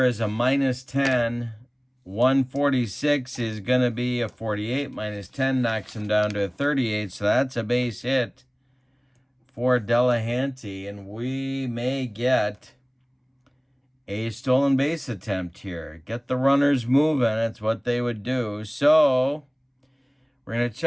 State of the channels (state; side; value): identical; both; correlation 1.00